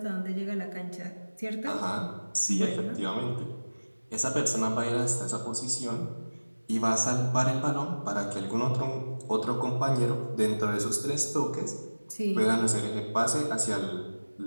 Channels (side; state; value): both; inverted; correlation -1.00